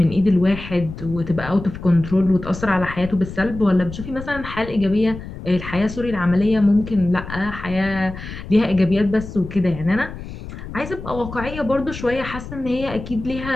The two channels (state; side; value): noise; left; rumble, 11 dB below the sound